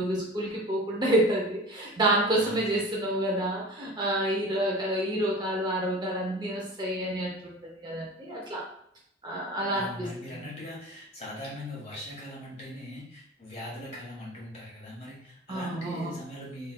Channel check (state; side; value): normal; both; correlation 0.37